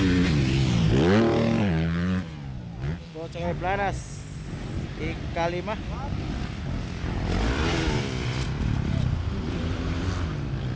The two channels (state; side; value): identical; both; correlation 1.00